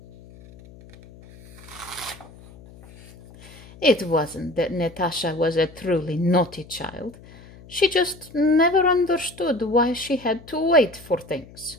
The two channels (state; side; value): noise; left; hum, 21 dB below the sound